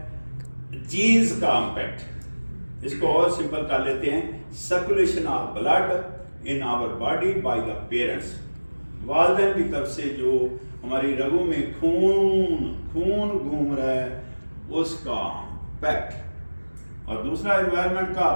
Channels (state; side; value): inverted; both; correlation -1.00